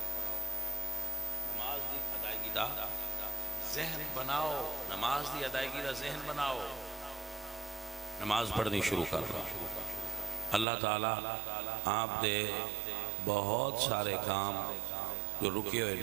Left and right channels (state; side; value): drops out; left; at 10.7 s